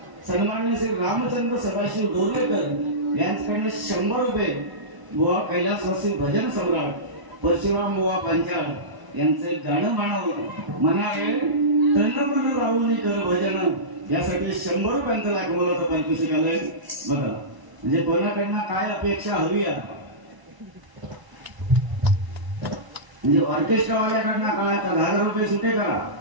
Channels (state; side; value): late; left; 1.0 ms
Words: सन्मान्य श्री रामचंद्र सदाशिव डोरलेकर यांच्याकडे 100 रुपये बुवा कैलासवासी भजन सम्राट परशुराम बुवा पांचाळ यांचे गाणं म्हणावे तन राहुल कर भजन यासाठी 100 रुपयांचं लाख बोलावं पारितोषिक आलंय. बघा म्हणजे कोणाकडनं काय अपेक्षा हवी आहे. म्हणजे ऑर्केस्ट्रावाल्याकडनं काय 10,000 रुपये सुटे करा